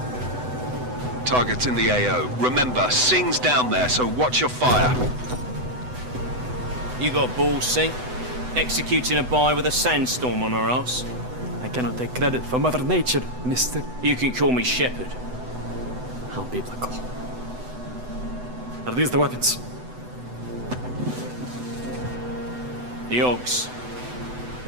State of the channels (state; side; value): late; left; 8.0 ms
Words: Target's in the AO. Remember, Singh's down there, so watch your fire. You got balls, Singh? Executing a buy with a sandstorm on our ass? I cannot take credit for Mother Nature, mister. You can call me Shepard. How biblical. Are these the weapons? The Ogs.